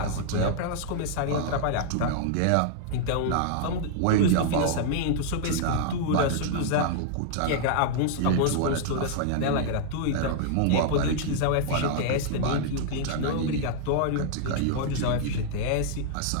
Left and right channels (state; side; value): different; both; correlation -0.01